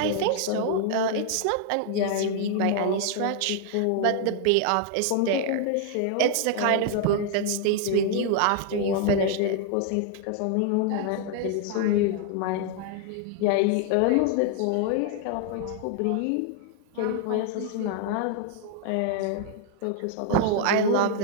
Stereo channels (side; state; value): both; different; correlation 0.00